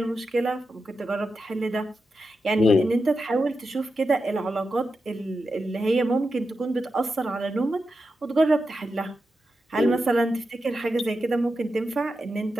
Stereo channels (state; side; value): normal; both; correlation 0.89